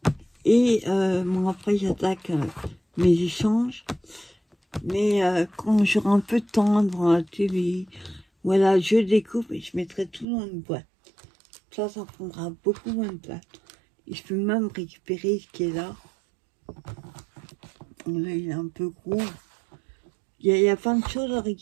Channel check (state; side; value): drops out; left; at 10.2 s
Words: Et bon, après, j'attaque mes échanges. Mais quand j'aurai un peu de temps devant la télé, voilà, je découpe et je mettrai tout dans une boîte. Ça prendra beaucoup moins de place. Et je peux même récupérer ce qui est là. Là, il est un peu gros. Il y a plein de choses à